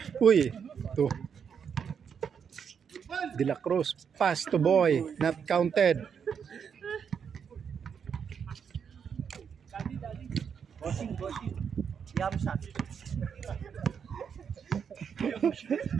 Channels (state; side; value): quieter; left; 7.1 dB